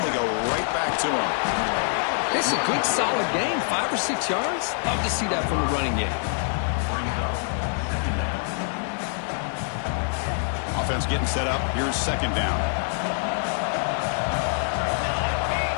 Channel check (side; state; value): right; silent; 62 dB below the other